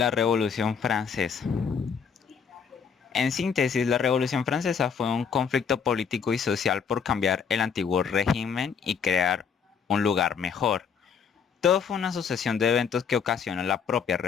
Revolución Francesa. En síntesis, la Revolución Francesa fue un conflicto político y social por cambiar el antiguo régimen y crear un lugar mejor. Todo fue una sucesión de eventos que ocasionó la propia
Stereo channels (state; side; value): quieter; right; 6.6 dB